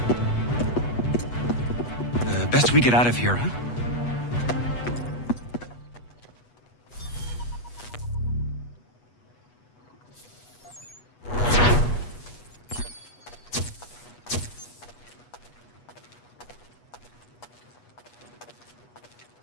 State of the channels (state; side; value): late; right; 8.3 ms